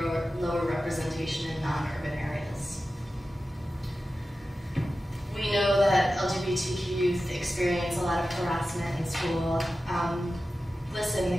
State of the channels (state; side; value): normal; both; correlation 0.94